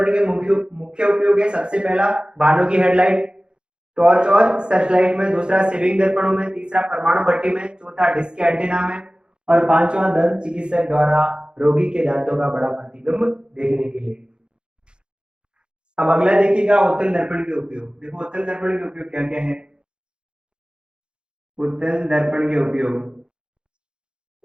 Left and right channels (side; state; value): left; late; 0.051 ms